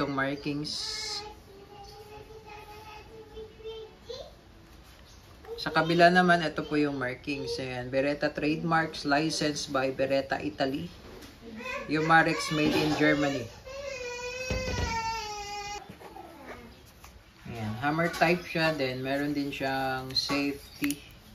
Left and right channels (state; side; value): identical; both; correlation 1.00